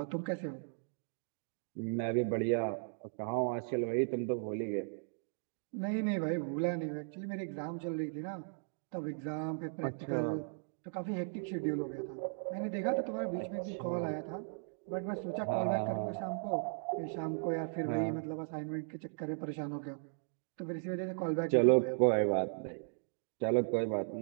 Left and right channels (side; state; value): left; silent; digital silence